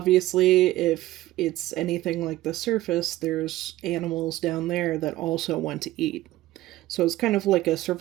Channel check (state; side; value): quieter; left; 16.2 dB